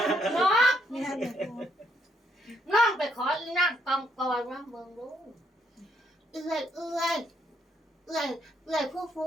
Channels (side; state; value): both; normal; correlation 0.74